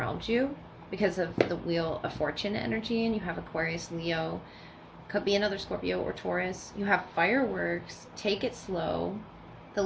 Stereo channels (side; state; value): both; identical; correlation 1.00